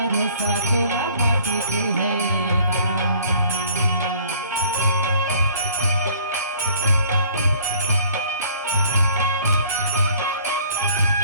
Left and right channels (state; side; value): inverted; both; correlation -0.54